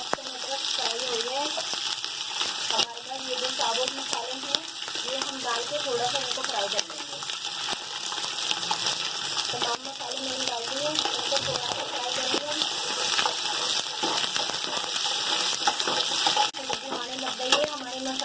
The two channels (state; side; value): identical; both; correlation 1.00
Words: अदरक फ्राई हो गया है। हमारे पास ये जो साबुत मसाले हैं ये हम डाल के थोड़ा सा इनको फ्राई कर लेंगे। तमाम मसाले मैंने डाल दिए, इनको थोड़ा सा फ्राई करेंगे। खुशबू आने लग गई है हमारे